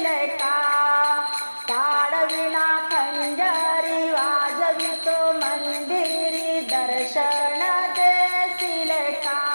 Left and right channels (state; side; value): inverted; both; correlation -1.00